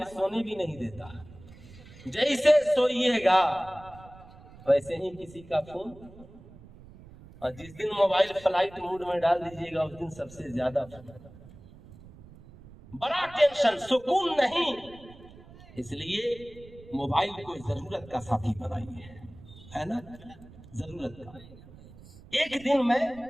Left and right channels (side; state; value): right; noise; rumble, 20 dB below the sound